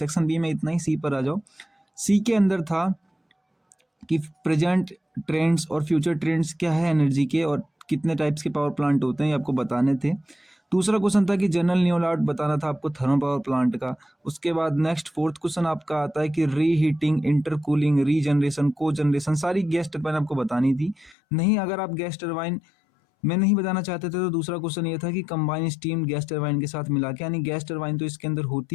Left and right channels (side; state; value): right; drops out; at 21.2 s